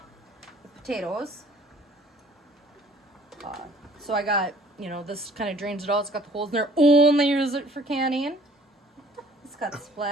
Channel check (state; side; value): normal; both; correlation 0.55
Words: with potatoes. So I got, you know, this kind of drains it out. It's got the holes in there. Only use it for canning. It's got